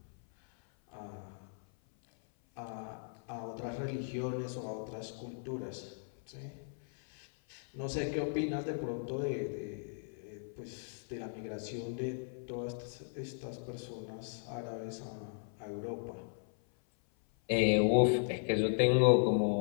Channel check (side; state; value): right; silent; 53 dB below the other